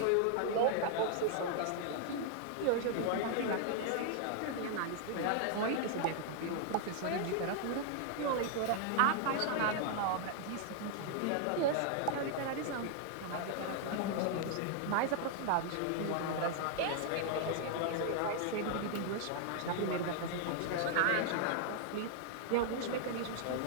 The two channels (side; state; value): both; different; correlation 0.00